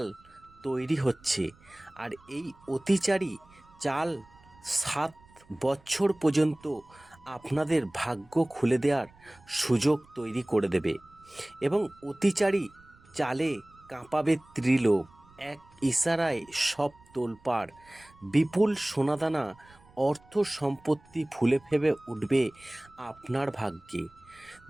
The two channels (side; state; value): right; noise; rumble, 27 dB below the sound